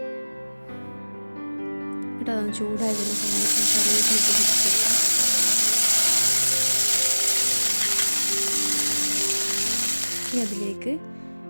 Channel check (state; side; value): inverted; both; correlation -1.00